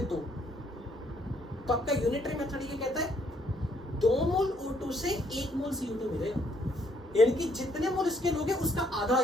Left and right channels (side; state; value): both; normal; correlation 0.69